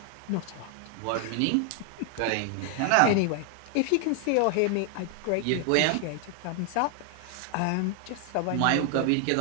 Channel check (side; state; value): both; different; correlation 0.00